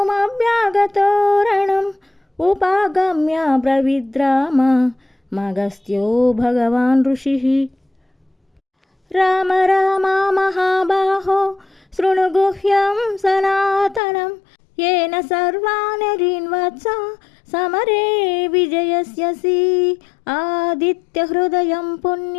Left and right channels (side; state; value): right; drops out; at 14.0 s